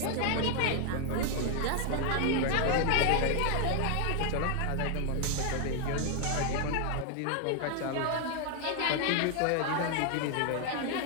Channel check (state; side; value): different; both; correlation 0.00